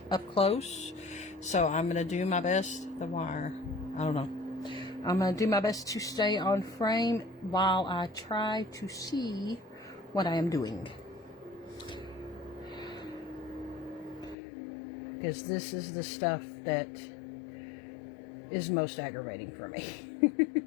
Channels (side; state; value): right; drops out; at 14.4 s